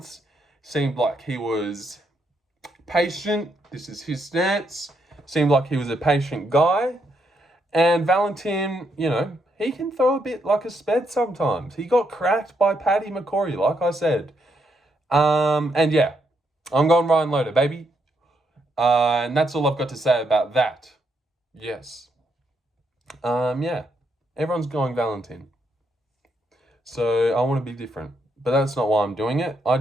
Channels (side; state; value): both; normal; correlation 0.77